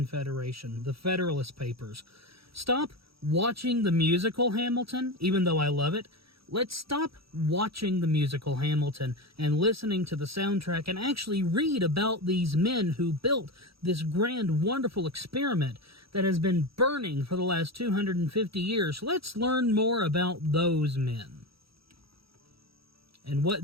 the Federalist Papers. Stop watching the musical Hamilton, even though I love it. Let's stop watching the musical Hamilton and listening to the soundtrack and actually read about these men who built this grand, wonderful experiment that has been burning for the last 250 years. Let's learn more about those men and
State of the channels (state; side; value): late; left; 0.76 ms